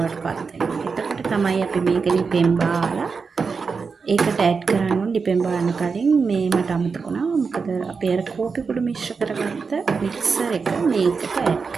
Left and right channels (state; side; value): quieter; left; 5.1 dB